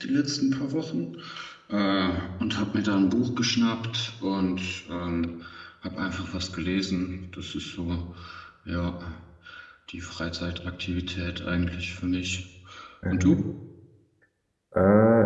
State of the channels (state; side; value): identical; both; correlation 1.00